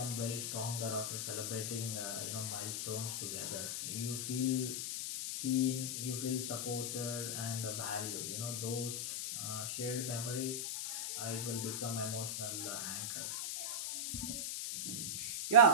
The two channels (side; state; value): left; noise; hiss, 2 dB below the sound